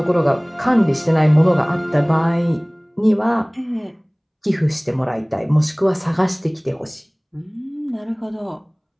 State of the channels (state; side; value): identical; both; correlation 1.00